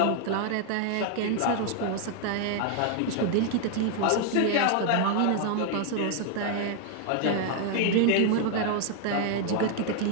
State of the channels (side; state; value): both; different; correlation 0.00